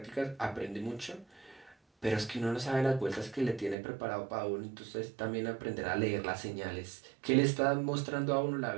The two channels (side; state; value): left; drops out; at 3.8 s